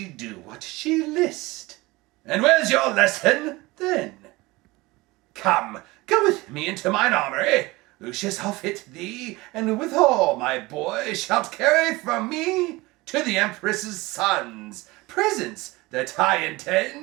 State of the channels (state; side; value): quieter; left; 21.5 dB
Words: do what she list. And where's your lesson, then? Come, go with me into mine armory. Lucius, I'll fit thee, and withal, my boy, shalt carry from me to the Empress's sons presents that I